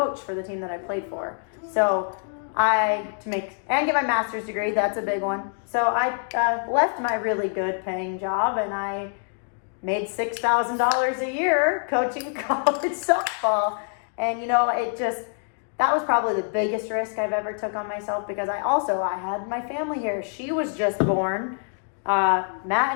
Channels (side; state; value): right; silent; 59 dB below the other